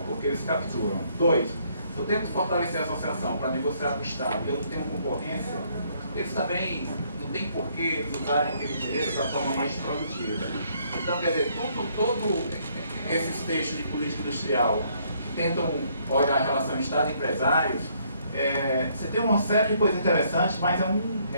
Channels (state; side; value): inverted; both; correlation -0.67